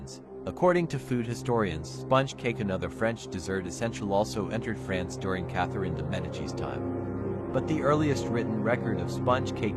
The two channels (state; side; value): identical; both; correlation 1.00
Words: According to food historians, sponge cake, another French dessert essential, also entered France during Catherine de Medici's time. But the earliest written record of sponge